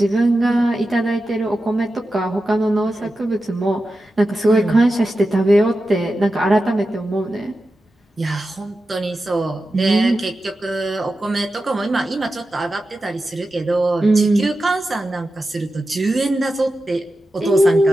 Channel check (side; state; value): both; normal; correlation 0.92